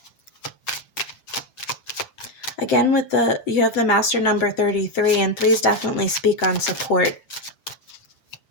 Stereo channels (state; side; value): late; right; 7.8 ms